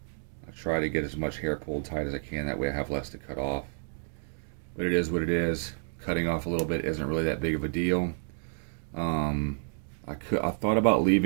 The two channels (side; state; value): left; silent; digital silence